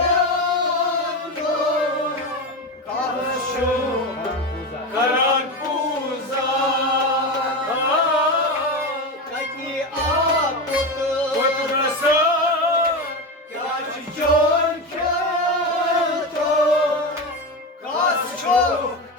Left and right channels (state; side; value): normal; both; correlation 0.19